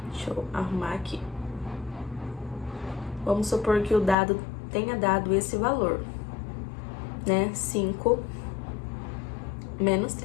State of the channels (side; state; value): right; drops out; at 4.2 s